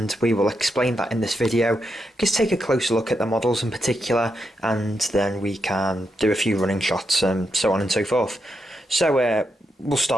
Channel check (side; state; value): both; normal; correlation 0.84